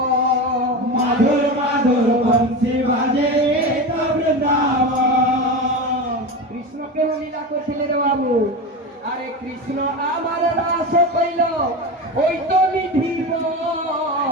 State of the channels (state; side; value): normal; both; correlation 0.23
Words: মাধুর মাধুর বংশী বাজে এই তো বৃন্দাবন কৃষ্ণ কেন লীলা করছিলে রে বাবু আরে কৃষ্ণ আমার রাস কইল ওই তো